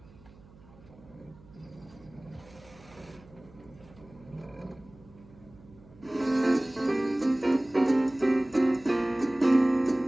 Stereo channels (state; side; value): noise; right; hum, 24 dB below the sound